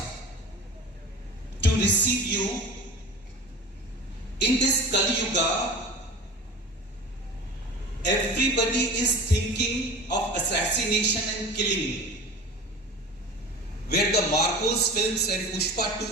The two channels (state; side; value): normal; both; correlation 0.35